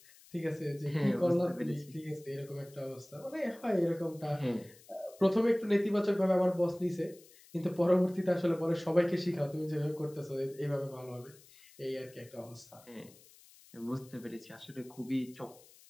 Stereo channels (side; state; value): left; noise; hiss, 24 dB below the sound